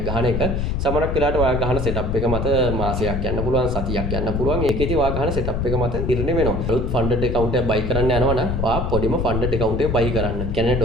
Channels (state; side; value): noise; left; rumble, 1 dB below the sound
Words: ගහන එක සමහරක් වෙලාවට ඔයා ගහන setup එක මත මාසයක් යන්න පුළුවන්, සතියක් යන්න පුළුවන්. ඒකෙදි ඔයා ගහන setup එක මත නිර්ණය වෙනවා. අලුත් funded account එකක් buy කරන්න යනවා නම් ඔයා පොඩිම funded account එක buy කරන්න. කියන්නේ